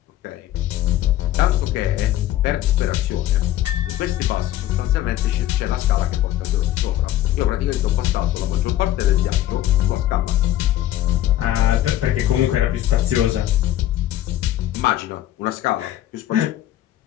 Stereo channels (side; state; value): right; quieter; 13.3 dB